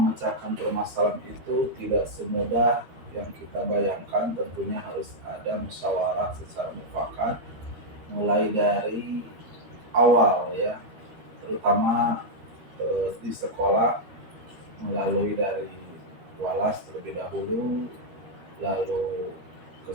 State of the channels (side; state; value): left; late; 13 ms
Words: permasalahan itu tidak semudah yang kita bayangkan, tentunya harus ada musyawarah secara mufakat mulai dari awal ya, terutama di sekolah melalui dari walas terlebih dahulu, lalu